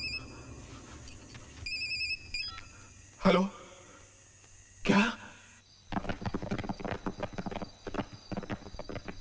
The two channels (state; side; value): identical; both; correlation 1.00